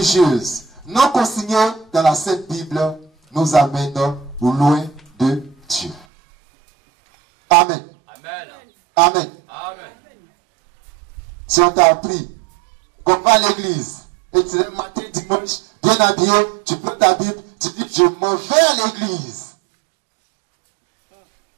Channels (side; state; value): left; drops out; at 6.1 s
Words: non consignée dans la Sainte Bible nous amène loin de Dieu. Amen. Amen. Amen. Amen. Si on t'a appris qu'on va à l'église et tu es le matin, dimanche, bien habillé, tu prends ta Bible, tu dis je m'en vais à l'église.